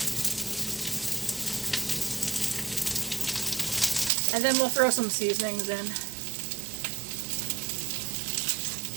And then we'll throw some seasonings in.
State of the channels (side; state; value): left; drops out; at 4.1 s